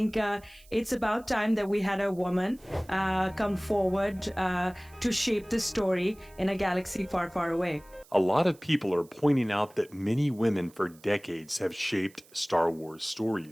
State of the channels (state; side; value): noise; right; hiss, 27 dB below the sound